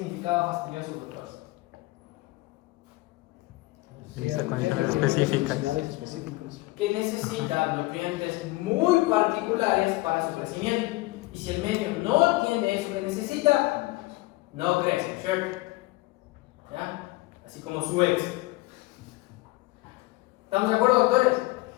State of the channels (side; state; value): right; quieter; 20.6 dB